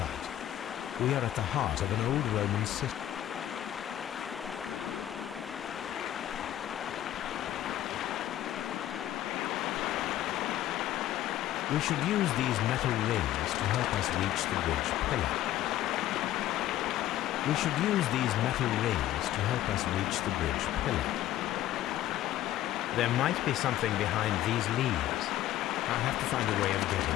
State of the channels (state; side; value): quieter; right; 13.1 dB